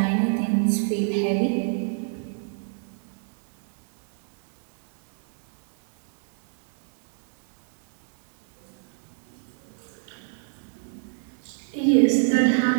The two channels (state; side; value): silent; left; digital silence